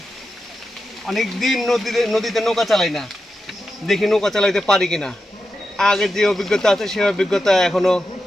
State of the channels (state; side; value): normal; both; correlation 0.90